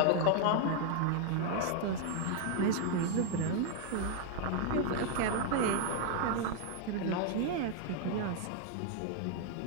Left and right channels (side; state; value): both; different; correlation 0.00